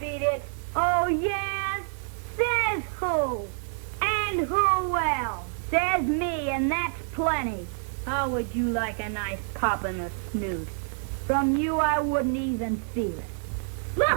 it. Oh, yeah? Says who? And who else? Says me, and that's plenty. How would you like a nice pop in the snoot? From you, I wouldn't even feel it.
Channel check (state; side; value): silent; left; 60 dB below the other